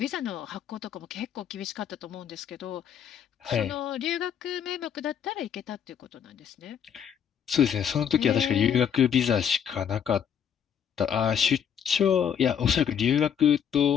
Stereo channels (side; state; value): right; quieter; 8.4 dB